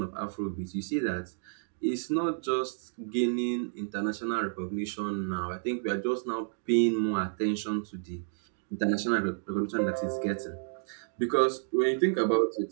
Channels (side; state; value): left; silent; digital silence